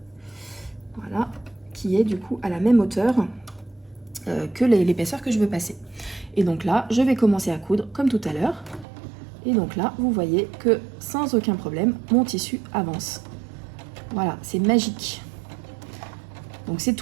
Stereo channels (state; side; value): drops out; left; at 8.8 s